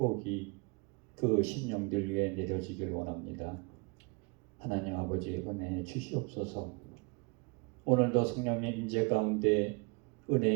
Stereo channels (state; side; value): quieter; left; 31.0 dB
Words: 그 심령들 위에 내려지길 원합니다. 하나님 아버지 은혜 주시옵소서. 오늘도 성령의 임재 가운데